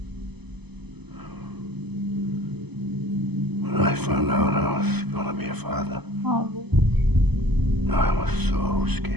When I found out I was gonna be a father, 아, I was so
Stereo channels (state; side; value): late; left; 0.99 ms